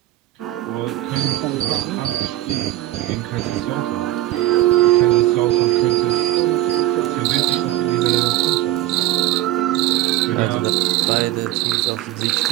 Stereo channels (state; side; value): quieter; left; 15.3 dB